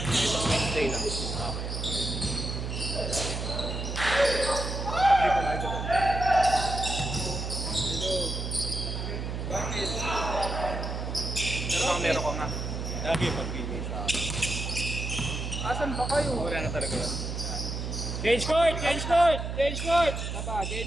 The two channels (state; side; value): noise; right; hum, 4 dB below the sound